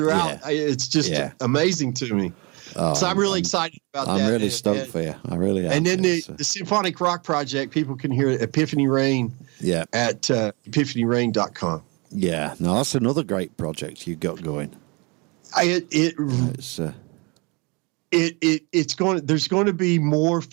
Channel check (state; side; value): quieter; left; 29.2 dB